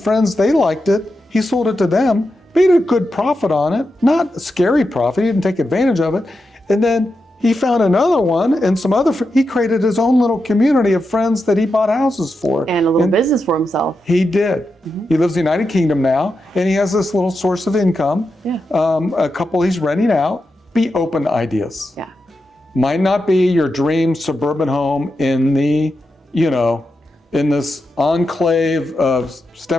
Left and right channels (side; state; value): both; normal; correlation 0.88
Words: They liked it. He sold it to them. Made a good profit on it. Not a scary profit. He didn't take advantage of it. And then he found another one and some other, he created his own little community of friends that he bought houses for. And a little business for himself. He did. He lives in the United Kingdom now, and he has this little source of income. Yeah. A couple he's renting out. Be open to ideas. Yeah. Might not be your dream suburban home in the, in this enclave of